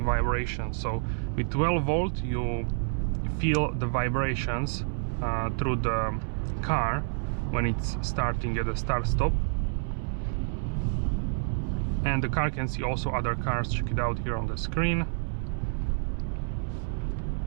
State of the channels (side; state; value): left; silent; 59 dB below the other